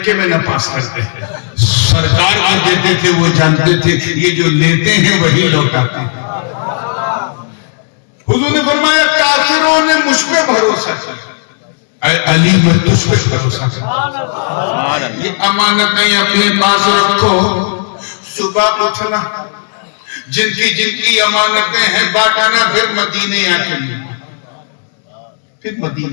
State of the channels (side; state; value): right; silent; digital silence